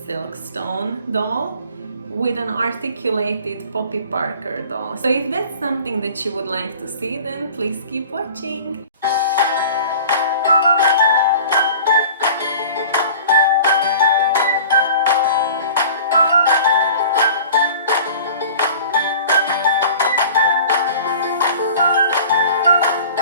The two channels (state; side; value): inverted; both; correlation -0.43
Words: Silkstone doll with an articulated Poppy Parker doll. So if that's something that you would like to see, then please keep watching.